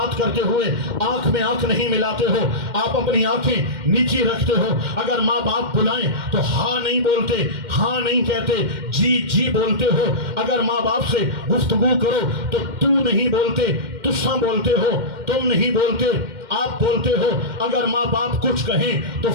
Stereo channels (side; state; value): left; late; 2.1 ms